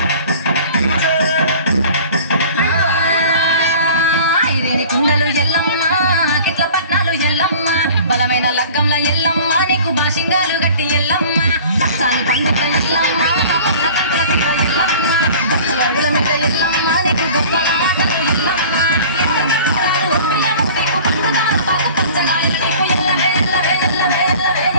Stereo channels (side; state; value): both; inverted; correlation -0.44